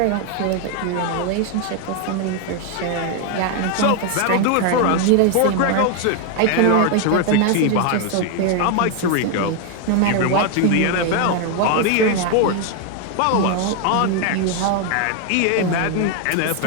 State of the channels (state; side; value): different; both; correlation 0.01